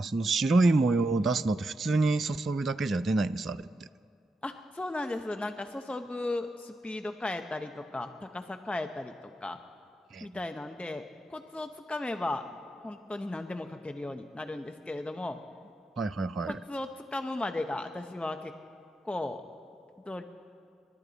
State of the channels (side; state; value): both; normal; correlation 0.86